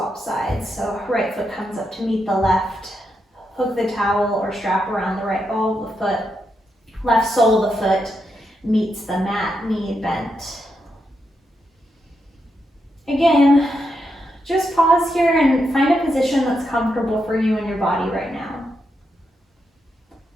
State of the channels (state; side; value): normal; both; correlation 0.83